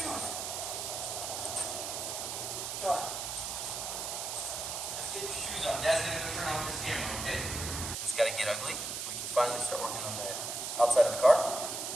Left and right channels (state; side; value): noise; right; hiss, 4 dB below the sound